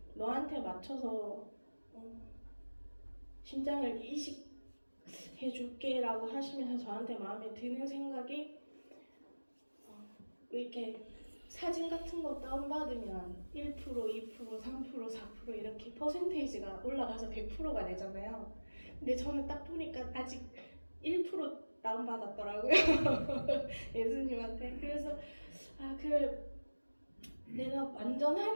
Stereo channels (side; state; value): both; inverted; correlation -1.00